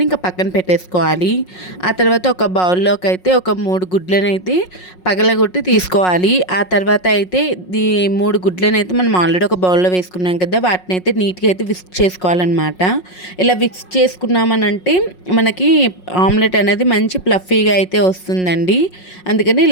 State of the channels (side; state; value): right; late; 5.5 ms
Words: ఇంకా పక్కన పెట్టేసుకోవాలి. ఆ తర్వాత ఒక బౌల్లోకి అయితే ఒక 3 గుడ్లను అయితే పగలగొట్టి తీసుకోవాలి. ఆ తర్వాత అయితే 3 గుడ్లను అయితే మనం ఆల్రెడీ ఒక బౌల్లో వేసుకున్నాం కదా, వాటిని అయితే నీట్గా అయితే విస్క్ చేసుకోవాలన్నమాట. ఇలా విస్క్ చేసుకున్నామనంటే మనకి ఆమ్లెట్ అనేది మంచి ప్లఫీగా అయితే వస్తుందండి. అందుకని